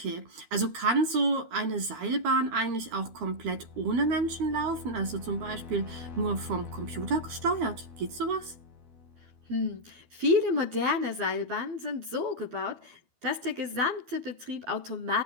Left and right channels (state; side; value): late; left; 12 ms